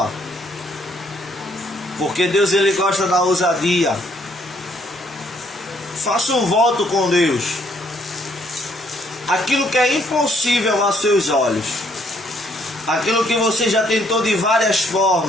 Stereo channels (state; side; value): normal; both; correlation 0.67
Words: porque Deus ele gosta da ousadia. Faça um voto com Deus. Aquilo que é impossível aos seus olhos, aquilo que você já tentou de várias